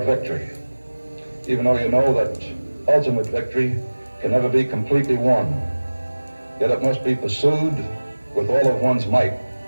victory. Even though you know that ultimate victory can never be completely won, yet it must be pursued with all of one's might.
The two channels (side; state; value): both; inverted; correlation -1.00